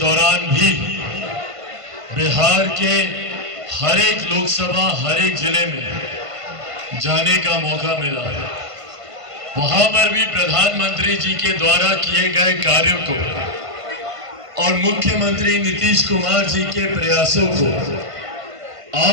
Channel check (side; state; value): left; late; 1.5 ms